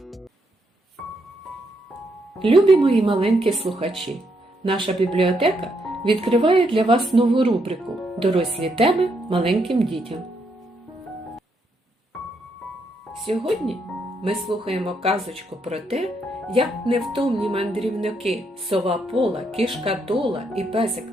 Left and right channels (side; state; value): both; normal; correlation 0.77